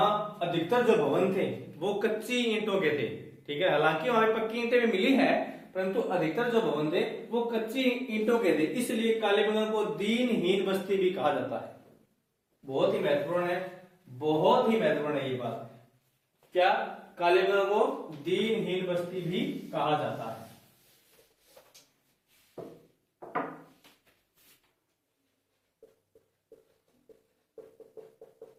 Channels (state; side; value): identical; both; correlation 1.00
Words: अधिकतर जो भवन थे वो कच्ची ईंटों के थे। ठीक है, हालांकि वहां पक्की ईंटें भी मिली है, परंतु अधिकतर जो भवन थे वो कच्ची ईंटों के थे, इसलिए कालीबंगा को दीनहीन बस्ती भी कहा जाता है। बहुत ही महत्वपूर्ण है, बहुत ही महत्वपूर्ण है ये बात। क्या, कालीबंगा को दीनहीन बस्ती भी कहा जाता है।